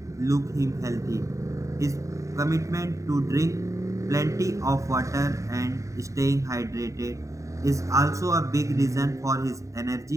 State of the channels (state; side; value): late; left; 0.15 ms